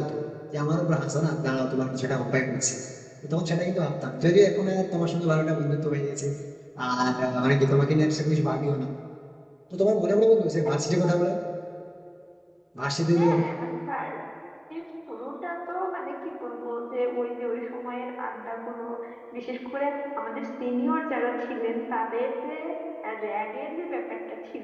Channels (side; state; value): both; identical; correlation 1.00